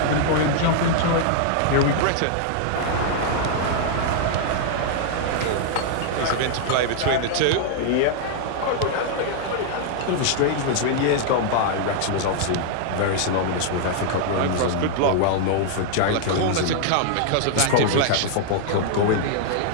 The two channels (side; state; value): both; different; correlation -0.01